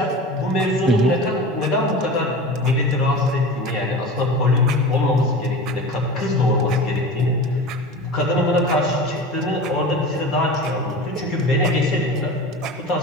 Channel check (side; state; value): both; normal; correlation 0.33